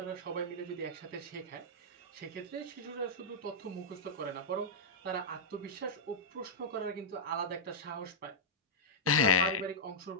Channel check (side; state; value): both; normal; correlation -0.09